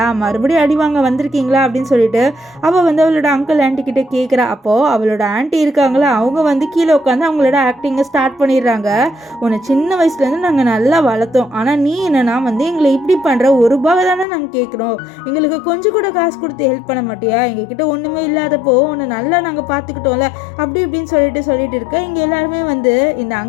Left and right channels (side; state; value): right; drops out; at 14.2 s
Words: மறுபடியும் அடி வாங்க வந்திருக்கீங்களா அப்படின்னு சொல்லிட்டு அவள் வந்து அவளோட அங்கிள் ஆண்டி கிட்ட கேட்குறா. அப்போது அவளோட ஆண்டி இருக்காங்களா, அவங்க வந்து கீழே உட்காந்து அவங்களோட ஆக்டிங்கை ஸ்டார்ட் பண்ணிடுறாங்க. உன்னை சின்ன வயசுலேருந்து நாங்கள் நல்லா வளர்த்தோம், ஆனால் நீ என்னன்னா வந்து எங்களை இப்படி பண்ணுற, ₹1 தானே நாங்கள் கேட்குறோம், எங்களுக்கு கொஞ்சம் கூட காசு கொடுத்து ஹெல்ப் பண்ண மாட்டியா, எங்ககிட்ட ஒன்றுமே இல்லாதப்போ உன்னை நல்லா நாங்கள் பார்த்துக்கிட்டோம்ல அப்படி இப்படின்னு சொல்லிட்டு இருக்க. இங்கே எல்லாருமே வந்து இந்த